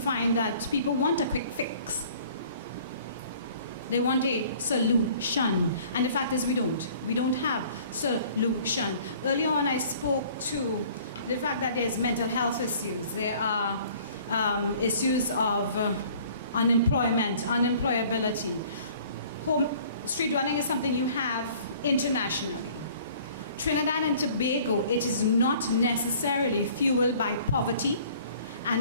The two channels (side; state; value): both; inverted; correlation -0.53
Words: that people want a quick fix. They want a solution. And the fact is we don't. We don't have solution. Earlier on I spoke to the fact that there's mental health issues. There are issues of unemployment, unemployability. Street dwelling is something you have internationally. Trinidad and Tobago, it is not necessarily fueled by poverty